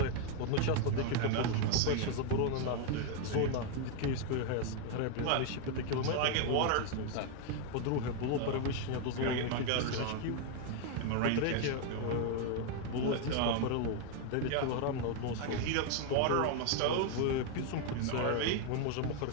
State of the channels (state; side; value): different; both; correlation 0.01